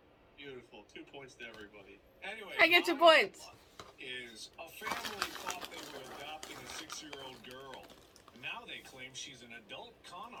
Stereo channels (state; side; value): identical; both; correlation 1.00